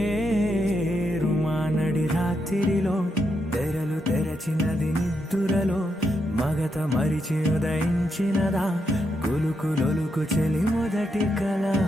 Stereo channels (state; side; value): normal; both; correlation 0.82